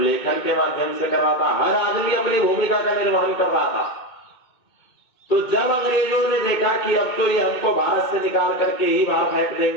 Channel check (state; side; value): late; right; 2.2 ms